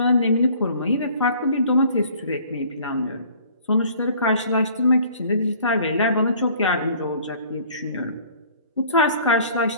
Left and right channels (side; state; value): both; inverted; correlation -0.53